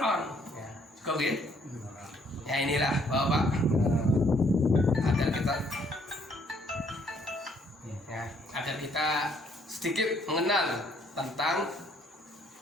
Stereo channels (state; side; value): normal; both; correlation 0.66